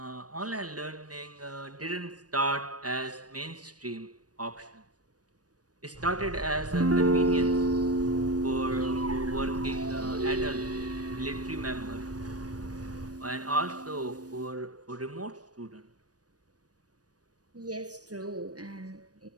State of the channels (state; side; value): late; left; 0.68 ms